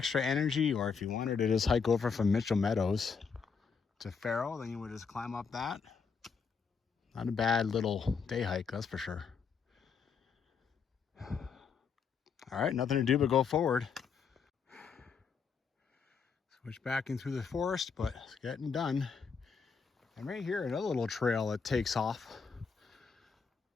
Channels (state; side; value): quieter; right; 5.8 dB